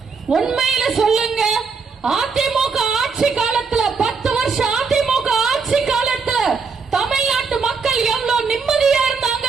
உண்மையில சொல்லுங்க, அதிமுக ஆட்சி காலத்துல 10 வருஷம் அதிமுக ஆட்சி காலத்துல தமிழ்நாட்டு மக்கள் எவ்வளவு நிம்மதியா இருந்தாங்க,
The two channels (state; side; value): quieter; left; 5.1 dB